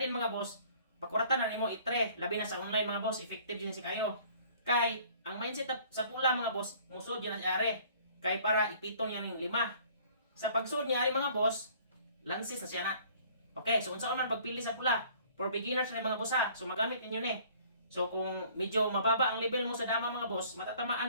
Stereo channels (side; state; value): both; inverted; correlation -0.54